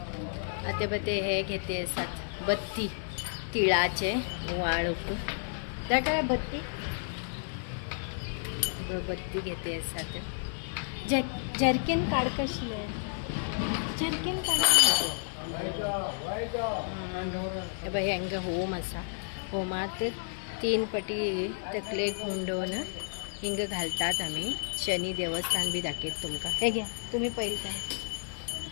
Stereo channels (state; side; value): silent; right; digital silence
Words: आता बते हे घेते असतात बत्ती तिळाचे वाळूक त्या काय बत्ती बत्ती घेते असतात. जर्किन काढ कशी आहे. जर्किन काढ बाई हंग होम असा होमात 3 पटी तकले गुंडवून हिंग घालतात. आम्ही शनी देवस्थान बी दाखवत तुमका. हे घ्या तुम्ही पहिले काय